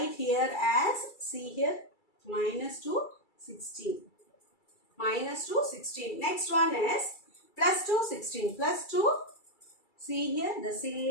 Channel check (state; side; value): late; right; 2.3 ms